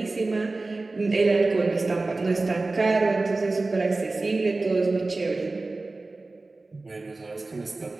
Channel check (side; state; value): left; quieter; 3.3 dB